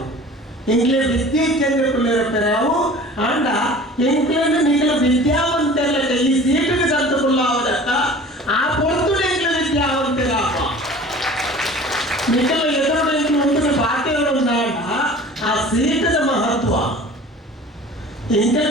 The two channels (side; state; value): both; normal; correlation 0.43